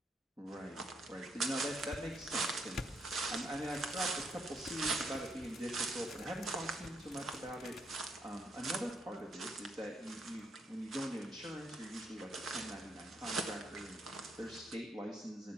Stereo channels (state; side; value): normal; both; correlation 0.75